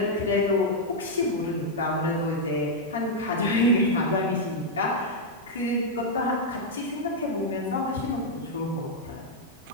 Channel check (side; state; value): both; normal; correlation -0.03